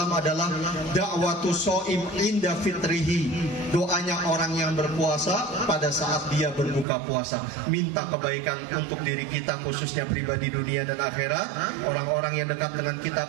adalah da'watu shaim inda fitrihi. Doanya orang yang berpuasa pada saat dia berbuka puasa, minta kebaikan untuk diri kita, khususnya pribadi dunia dan akhirat, orang-orang yang dekat dengan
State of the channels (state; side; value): drops out; left; at 6.9 s